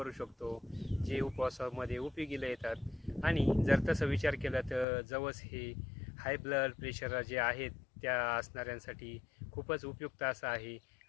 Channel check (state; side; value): drops out; right; at 4.9 s